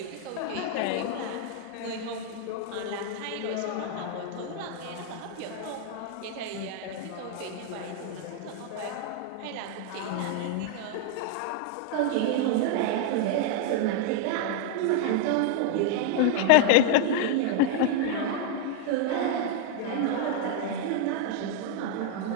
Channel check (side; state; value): both; different; correlation 0.00